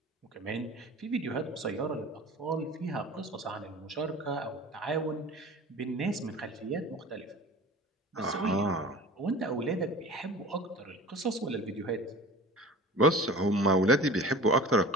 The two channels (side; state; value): both; normal; correlation 0.39